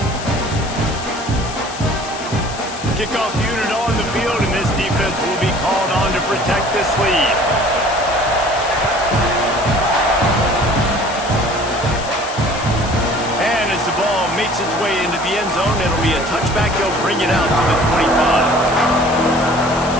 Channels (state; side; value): noise; left; hiss, 12 dB below the sound